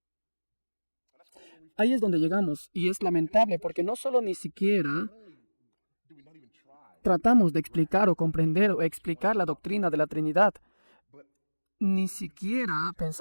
Ahí es donde llegamos, y es lamentable porque no solo ni siquiera tratamos de explicar o comprender o explicar la doctrina de la Trinidad, ni siquiera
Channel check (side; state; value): both; inverted; correlation -1.00